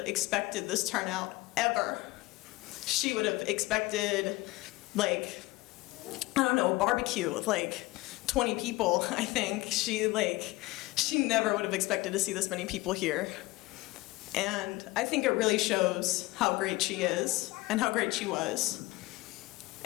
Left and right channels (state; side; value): quieter; right; 20.6 dB